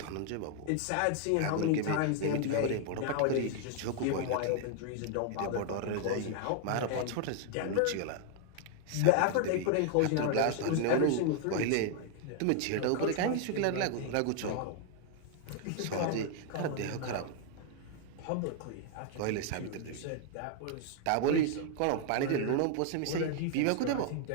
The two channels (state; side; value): different; both; correlation 0.00